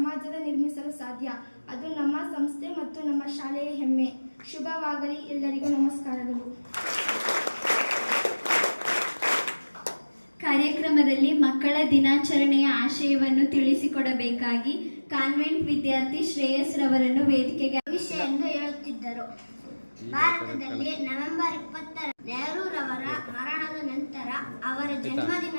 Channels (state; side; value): inverted; both; correlation -1.00